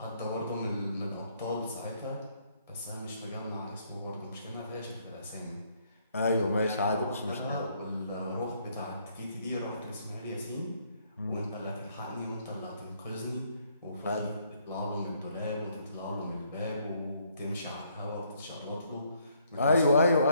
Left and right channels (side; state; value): both; inverted; correlation -0.69